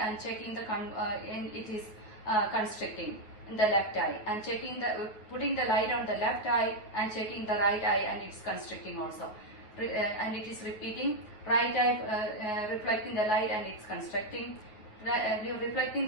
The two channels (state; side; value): late; right; 9.2 ms